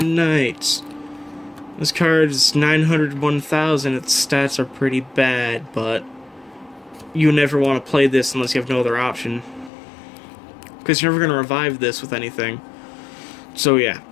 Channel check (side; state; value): right; drops out; at 9.7 s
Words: Knights. This card is 900, 1000. Its stats are pretty bad, but you never want to play this unless you have no other option, because you're never going to revive this with anything. So yeah,